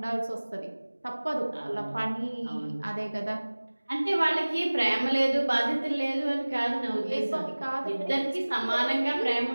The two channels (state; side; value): inverted; both; correlation -1.00